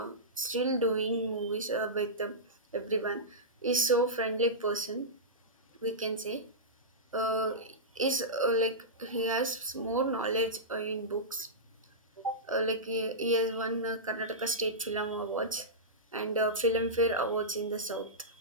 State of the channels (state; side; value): normal; both; correlation -0.14